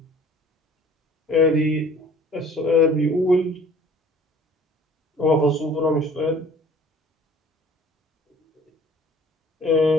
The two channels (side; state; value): both; normal; correlation 0.52